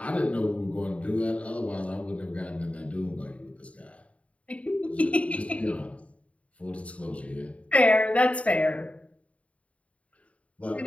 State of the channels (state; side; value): late; right; 0.065 ms